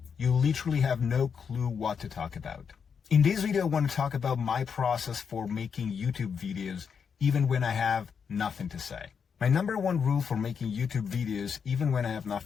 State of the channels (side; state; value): right; quieter; 6.5 dB